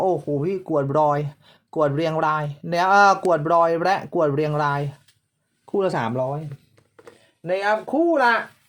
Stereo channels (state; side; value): identical; both; correlation 1.00